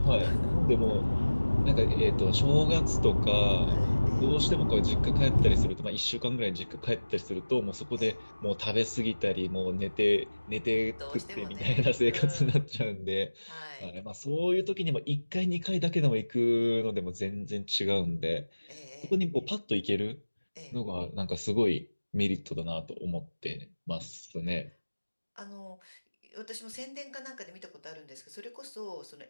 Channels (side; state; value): both; inverted; correlation -1.00